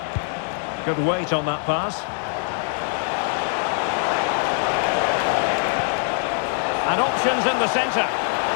Good weight on that pass. And options in the centre.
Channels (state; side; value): silent; right; 58 dB below the other